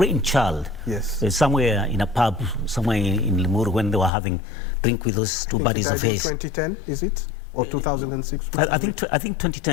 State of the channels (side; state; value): right; drops out; at 4.1 s